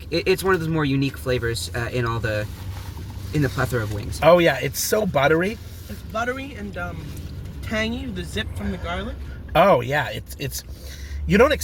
it's one of those more unique flavors in the plethora of wings. Oh yeah, it's so buttery. It's buttery and tangy. The zip from the garlic. Oh yeah, it's. You don't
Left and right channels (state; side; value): identical; both; correlation 1.00